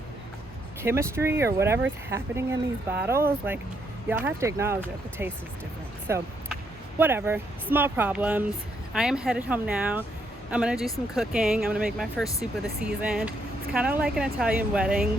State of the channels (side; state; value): both; normal; correlation 0.75